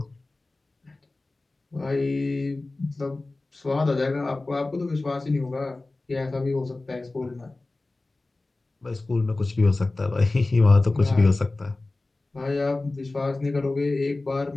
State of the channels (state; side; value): quieter; right; 3.1 dB